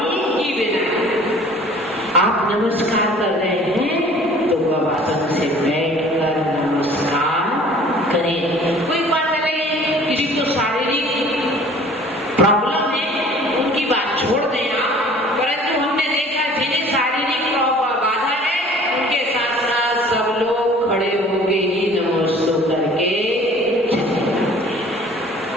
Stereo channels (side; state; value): both; normal; correlation 0.50